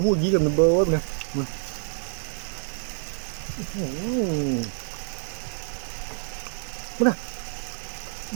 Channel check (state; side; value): silent; left; digital silence